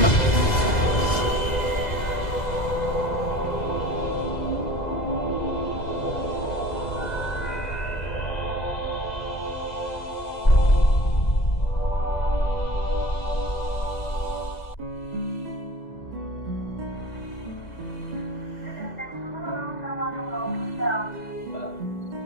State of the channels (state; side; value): late; right; 2.0 ms